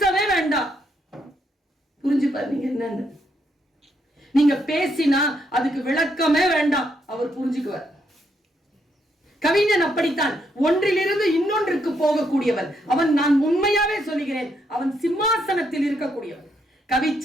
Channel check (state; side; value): normal; both; correlation 0.76